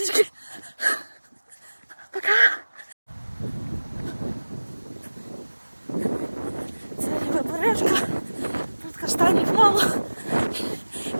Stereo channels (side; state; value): both; inverted; correlation -1.00